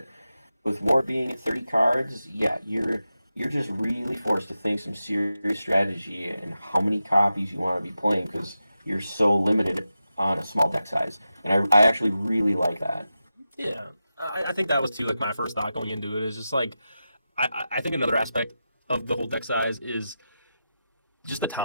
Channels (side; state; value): both; inverted; correlation -0.91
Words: with War being at 30 cards, yeah, you're just really forced to think some serious strategy and how many copies you want to be playing because you're so limited on a small deck size. And I actually really like that. Yeah, I think that was too like my first thought going into it is just like I think another aspect of the whole deck size is just the